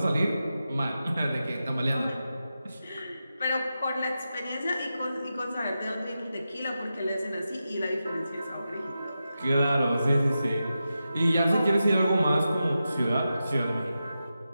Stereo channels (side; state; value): both; inverted; correlation -0.90